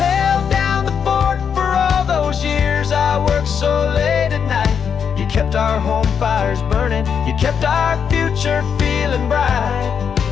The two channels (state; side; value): quieter; right; 7.2 dB